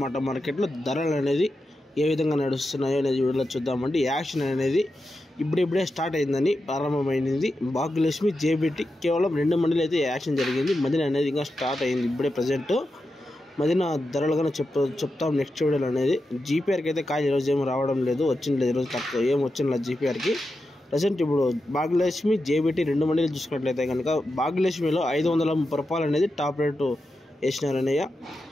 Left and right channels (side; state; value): both; normal; correlation 0.89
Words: మార్కెట్లో ధరలు అనేది ఏ విధంగా నడుస్తున్నాయో అనేది వీడియోలో చూద్దామండి. యాక్షన్ అనేది ఇప్పుడిప్పుడే స్టార్ట్ అయిందని ప్రారంభమైంది. భాగ్యలక్ష్మి జేబీటీ కేవలం 2 మండీలు అయితే యాక్షన్ జరిగింది. మదిన అనేది ఇంకా స్టార్ట్ అయింది ఇప్పుడే ప్రజెంట్. మదిన ధరలుగానే చెప్తాం నెక్స్ట్ వీడియోలో అనేది. జీపీఆర్కి అయితే కాయ ఈరోజు ఏమి రావడం లేదు, వచ్చింది లేదు ఈరోజు, తక్కువ ఏం వచ్చింది జీపీఆర్కి ప్రజెంట్. ఇప్పుడు భాగ్యలక్ష్మి జేబీటీ 2 మండీలు చూసుకున్నట్లయితే కనుక భాగ్యలక్ష్మిలో 530 రూపాయలు అనేది టాప్ రేటు వేసినారనయ్య.